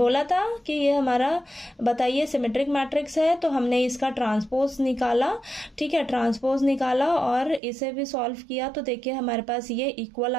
था कि ये हमारा बताइए सिमेट्रिक मैट्रिक्स है, तो हमने इसका ट्रांसपोज निकाला। ठीक है, ट्रांसपोज निकाला और इसे भी सॉल्व किया तो देखिए हमारे पास ये इक्वल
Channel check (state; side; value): drops out; left; at 7.6 s